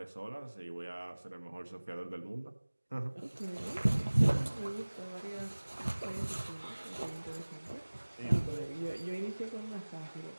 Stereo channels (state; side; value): inverted; both; correlation -1.00